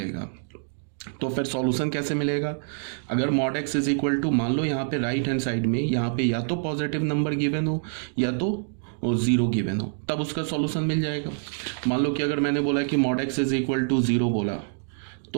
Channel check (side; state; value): left; silent; digital silence